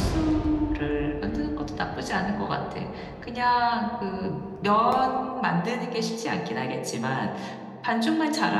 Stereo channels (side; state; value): both; identical; correlation 1.00